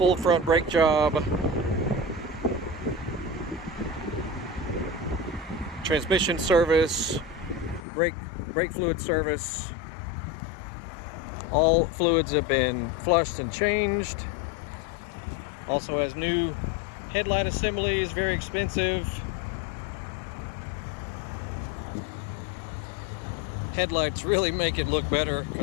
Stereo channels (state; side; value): drops out; right; at 7.9 s